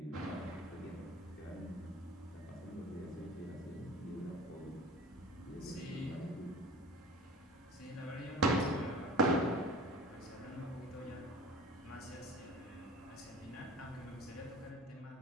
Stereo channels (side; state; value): both; normal; correlation 0.41